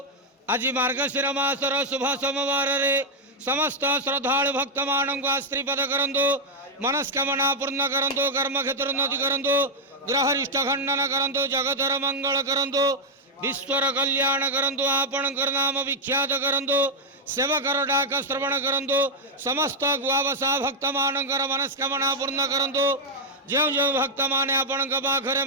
आज मार्गशीर मासर शुभ सोमवार रे समस्त श्रद्धालु भक्त मानक आश्रीपद करंतु मनस्कामना पूर्ण करंतु कर्म क्षेत्र उन्नति करंतु ग्रहरिष्ट खंडन करंतु जगतर मंगल करंतु विश्वर कल्याण करंतु आपणकर नाम विख्यात करंतु सेवकर डाक श्रवण करंतु समस्त गुआवसा भक्त मानकर मनस्कामना पूर्ण करंतु जो जो भक्त माने आपण पाखरे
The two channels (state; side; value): normal; both; correlation -0.02